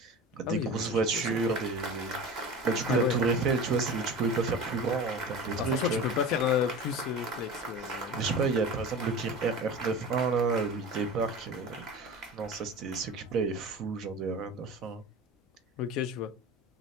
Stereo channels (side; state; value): both; normal; correlation 0.33